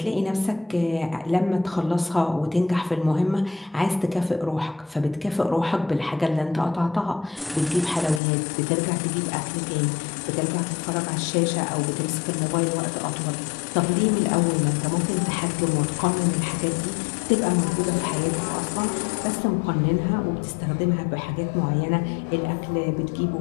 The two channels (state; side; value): drops out; right; at 8.2 s